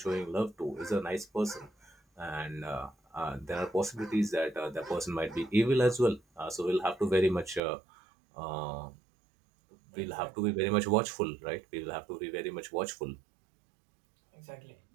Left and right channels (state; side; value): drops out; left; at 7.6 s